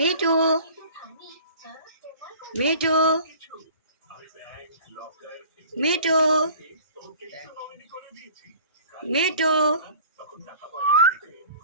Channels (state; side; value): inverted; both; correlation -0.47